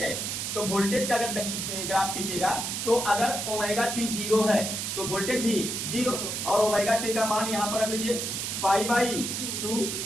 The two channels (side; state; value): right; noise; hiss, 3 dB below the sound